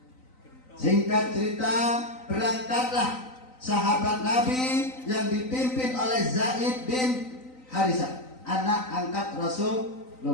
Singkat cerita, berangkatlah sahabat Nabi yang dipimpin oleh Zaid bin Harisah, anak angkat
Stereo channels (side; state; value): right; late; 3.9 ms